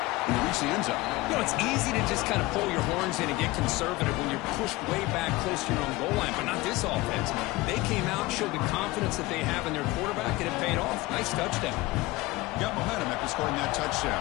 they reached the end zone. You know, it's easy to just kind of pull your horns in and get conservative when you're pushed way back close to your own goal line, but not this offense. They came out, showed the confidence that they have in their quarterback, and it paid off. Nice touchdown. Got momentum after scoring that touchdown.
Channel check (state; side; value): quieter; right; 20.4 dB